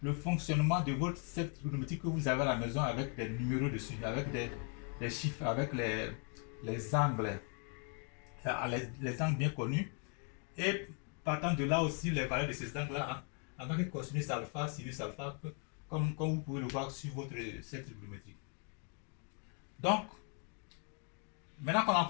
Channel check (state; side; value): quieter; right; 38.5 dB